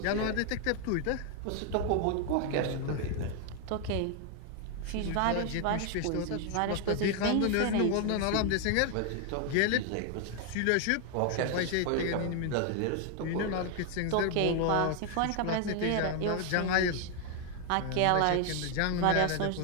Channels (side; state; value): both; different; correlation 0.01